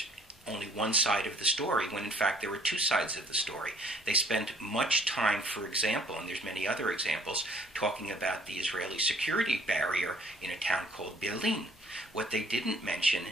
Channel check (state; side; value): normal; both; correlation 0.58